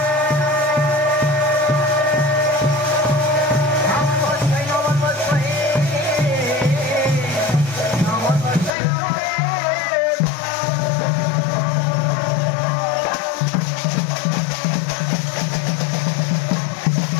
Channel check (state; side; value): drops out; right; at 8.7 s